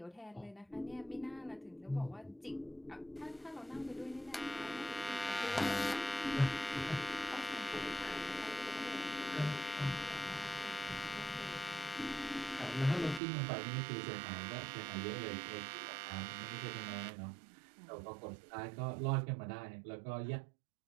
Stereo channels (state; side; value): drops out; left; at 13.2 s